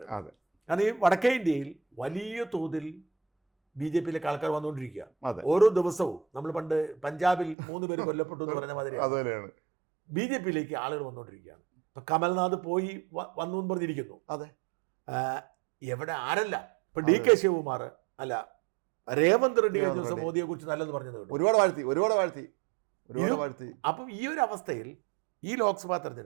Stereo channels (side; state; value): left; drops out; at 7.6 s